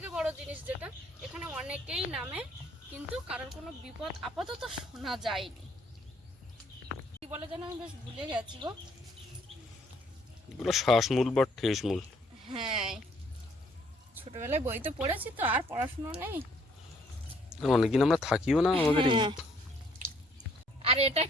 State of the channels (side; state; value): both; normal; correlation 0.64